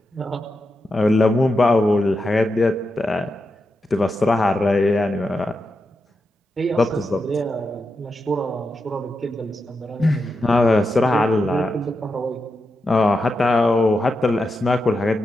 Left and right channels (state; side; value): normal; both; correlation 0.87